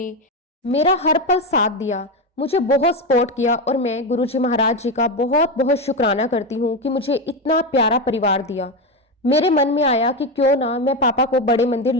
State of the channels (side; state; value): both; normal; correlation 0.14